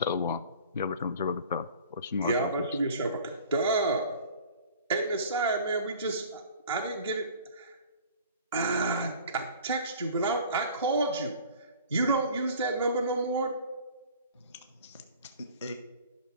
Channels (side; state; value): both; inverted; correlation -0.45